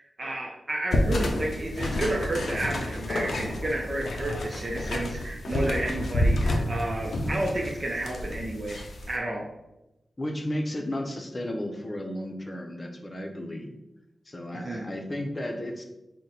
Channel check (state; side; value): normal; both; correlation 0.91